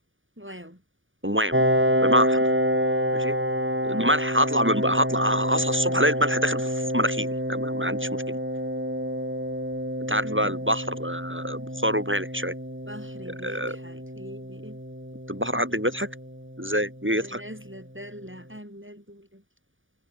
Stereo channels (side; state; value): left; late; 0.57 ms